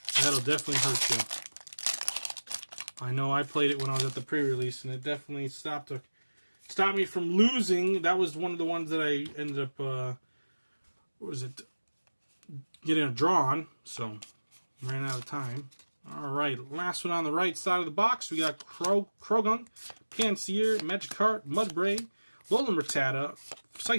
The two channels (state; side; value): inverted; both; correlation -1.00